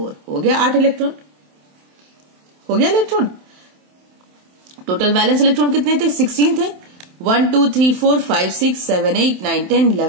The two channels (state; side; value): late; left; 27 ms